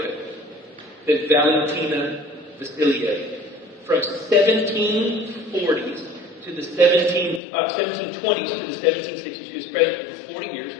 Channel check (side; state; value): right; drops out; at 7.4 s